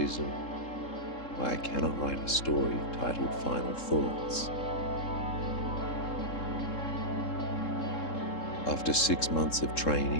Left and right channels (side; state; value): right; late; 3.7 ms